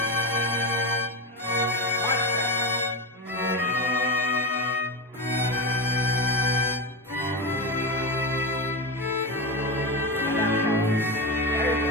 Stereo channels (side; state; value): both; normal; correlation 0.17